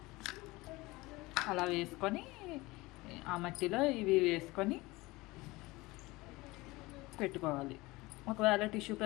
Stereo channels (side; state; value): right; quieter; 21.4 dB